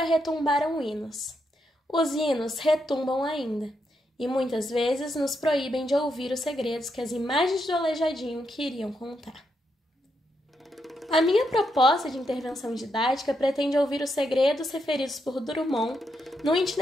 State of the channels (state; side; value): normal; both; correlation 0.81